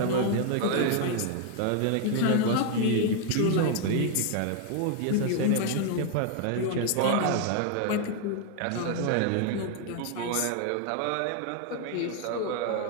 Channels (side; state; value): both; different; correlation 0.00